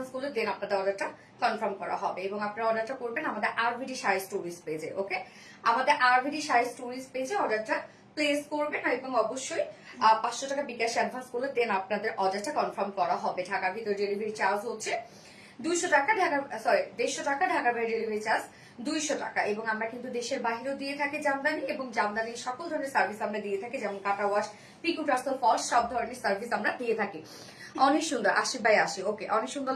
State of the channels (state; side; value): identical; both; correlation 1.00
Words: করলে দেন আপনাদের অর্ডারটা কনফার্ম করা হবে এবং আপনারা অর্ডারটা করবেন আমাদের আরভিডি শাড়ি স্টোরিজ পেজে। ওকে, আমাদের আরভিডি শাড়ি স্টোরিজ পেজে অর্ডারটা প্লেস করবেন এবং অবশ্যই 500 টাকা বিকাশ অ্যাডভান্স করলে দেন আপনাদের অর্ডারটা কনফার্ম করা হবে। ঢাকার ভিতরে ডেলিভারি চার্জ হচ্ছে 200 টাকা, ঢাকার 150 টাকা, ঢাকার বাইরে ডেলিভারি চার্জ 200 টাকা। এবং আমরা কিন্তু দেশের বাহিরেও দিয়ে থাকি জামদানি এবং জামদানির সকল ধরনের সার্ভিস আমরা দিয়ে থাকি, যেমন কাটা ওয়াশ, পিকু টাসল, ফলস, সব ধরনের সার্ভিস আমরা দিয়ে থাকি। অনেক সুন্দর, 80/80। ওকে, অনেক সুন্দর